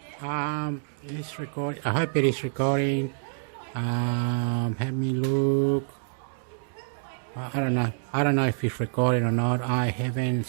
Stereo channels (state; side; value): silent; left; digital silence